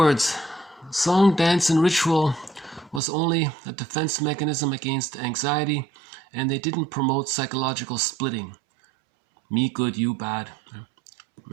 song, dance, and ritual was only a defense mechanism against anxiety, and they didn't promote psychological splitting. Me good, you bad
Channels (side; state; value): left; drops out; at 3.0 s